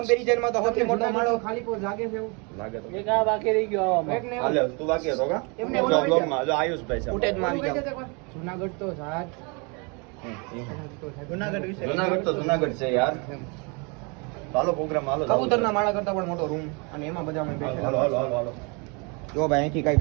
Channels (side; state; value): left; quieter; 31.7 dB